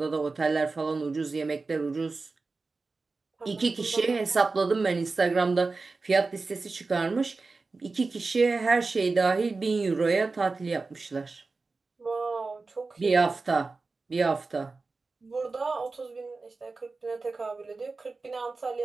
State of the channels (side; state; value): left; quieter; 3.9 dB